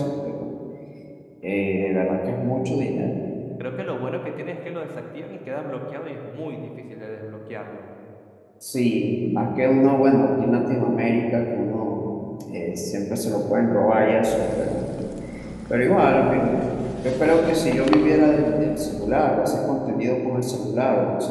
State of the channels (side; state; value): both; identical; correlation 1.00